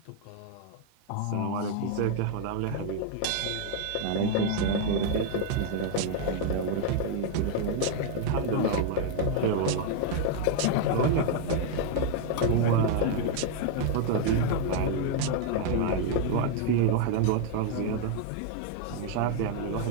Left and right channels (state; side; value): different; both; correlation 0.00